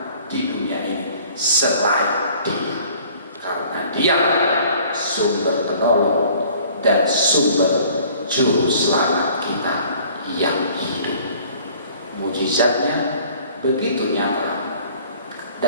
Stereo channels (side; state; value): both; inverted; correlation -0.53